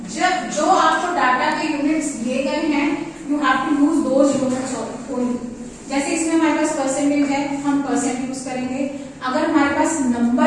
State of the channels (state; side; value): identical; both; correlation 1.00